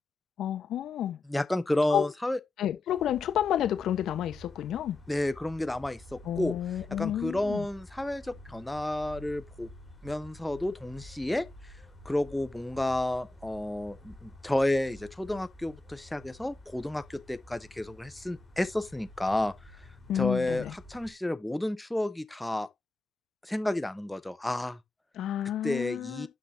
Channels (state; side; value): quieter; right; 3.1 dB